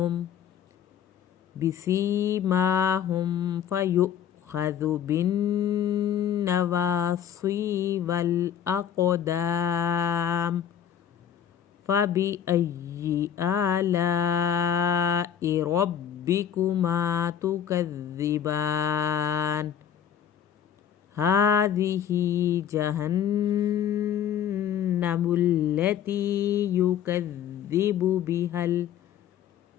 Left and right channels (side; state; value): right; quieter; 9.2 dB